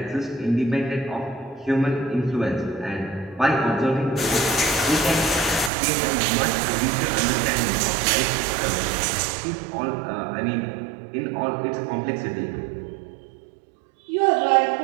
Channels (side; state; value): left; drops out; at 5.7 s